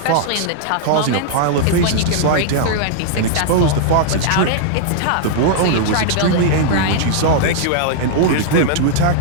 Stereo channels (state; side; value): different; both; correlation -0.01